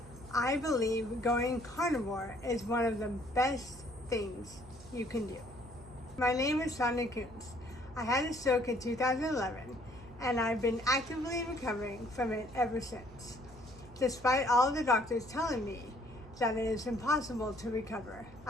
I believe going carnivore is one of the best things you can do. My name is Sonia. I had a stroke in 2011 and I've been actively recovering from it ever since, despite all the doctors telling me that it is impossible to recover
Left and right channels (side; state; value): right; noise; hum, 21 dB below the sound